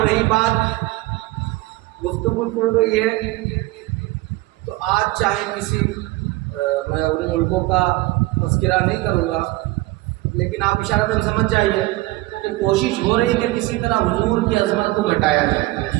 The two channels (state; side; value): quieter; left; 19.8 dB